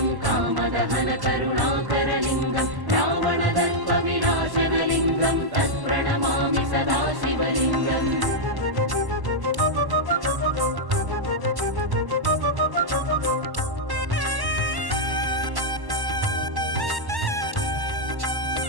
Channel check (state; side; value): late; left; 1.1 ms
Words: कामदहनकरुणाकरलिङ्गं रावणदर्पविनाशनलिङ्गं तत्प्रणमामि सदा शिवलिङ्गम्.